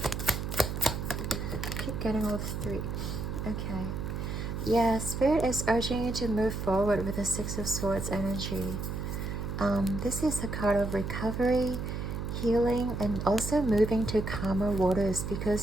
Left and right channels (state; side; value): noise; right; hum, 4 dB below the sound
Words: I keep getting all the 3. Okay. Yeah, Spirit is urging you to move forward with the 6 of Swords energy. This is a card of recovery, healing, and also moving to calmer waters,